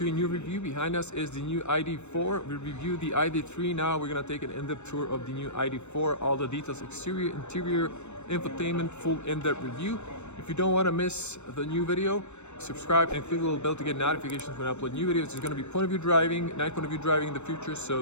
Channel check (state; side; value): late; right; 0.82 ms